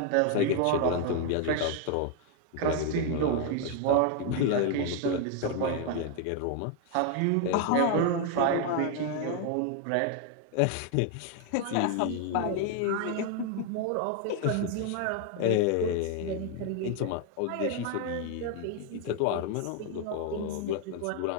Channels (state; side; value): different; both; correlation 0.01